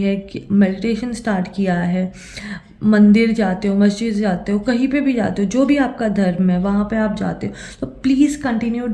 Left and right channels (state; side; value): identical; both; correlation 1.00